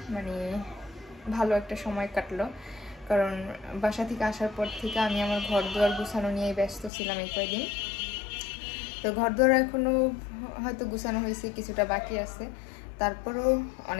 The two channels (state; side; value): drops out; right; at 6.9 s